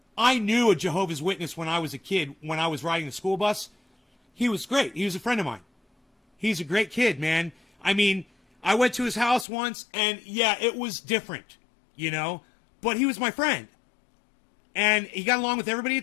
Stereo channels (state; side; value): drops out; right; at 9.5 s